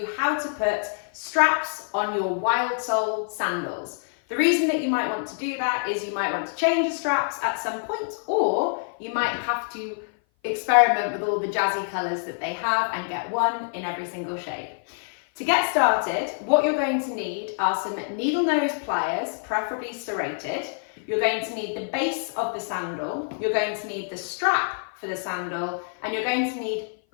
how to put straps on your wildsole sandals. The reason that you might want to do that is you might want to change the straps at some point, or you might have to experiment with all the jazzy colours that they have and get one in every single shade. To get started, what you're going to need are some needle nose pliers, preferably serrated. You're going to need the base of the sandal, you're going to need the strap for the sandal, and you're going to need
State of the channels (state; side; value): silent; right; 56 dB below the other